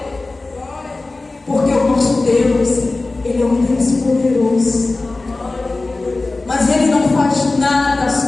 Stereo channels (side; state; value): right; quieter; 3.3 dB